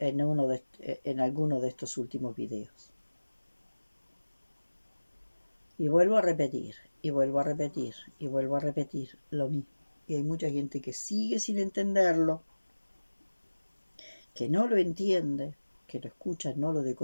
alguno de estos últimos videos. Y vuelvo a repetir, y vuelvo a repetir, y vuelvo a repetir lo mismo. Y hay mucha gente que sigue sin entenderlo, que no lo entiende, que lo escucha, no lo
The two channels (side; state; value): both; inverted; correlation -1.00